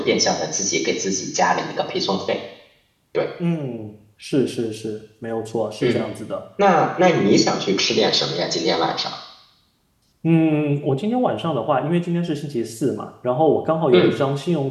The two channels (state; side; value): identical; both; correlation 1.00